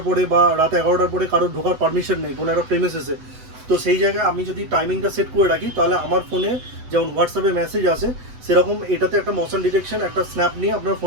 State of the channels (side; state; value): left; late; 8.0 ms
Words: পরে বা রাত 11টার পরে কারোর ঢোকার পারমিশন নেই কোনো একটা প্রেমিসেসে, তো সেই জায়গায় আমি যদি টাইমিংটা সেট করে রাখি তাহলে আমার ফোনে যেমন হোয়াটসঅ্যাপে মেসেজ আসে সেরকম এটাতে একটা মোশন ডিটেকশন, একটা স্ন্যাপ নিয়ে আপনার